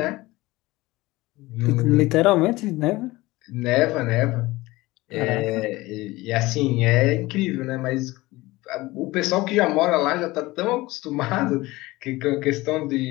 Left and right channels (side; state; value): right; quieter; 20.0 dB